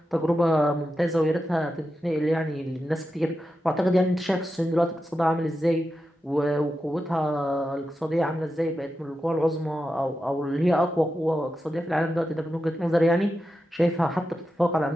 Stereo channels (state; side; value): normal; both; correlation 0.89